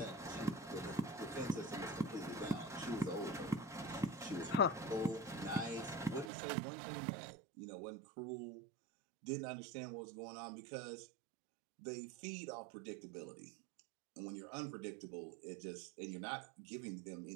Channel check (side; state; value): left; drops out; at 6.3 s